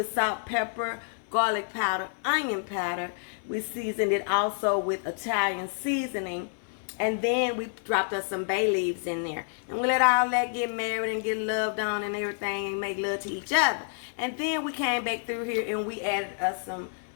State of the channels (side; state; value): right; silent; 59 dB below the other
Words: salt, pepper, garlic powder, onion powder. We seasoned it also with Italian seasoning. And then we dropped us some bay leaves in there. And we let all that get married and get loved on and everything and make love to each other. And then we came back through here and we added us some